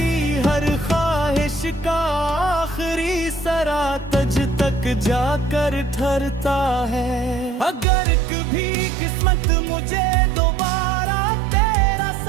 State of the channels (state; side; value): drops out; left; at 7.9 s